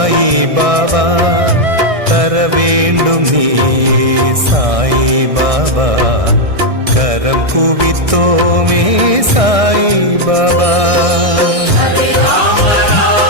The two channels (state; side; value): late; left; 1.6 ms